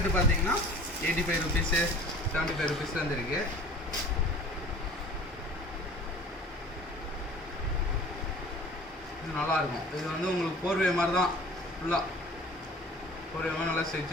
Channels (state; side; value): normal; both; correlation 0.45